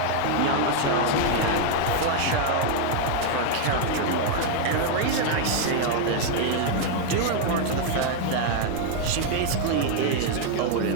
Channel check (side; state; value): both; different; correlation 0.00